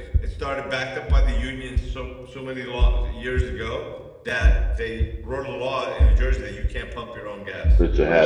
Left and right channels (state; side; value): identical; both; correlation 1.00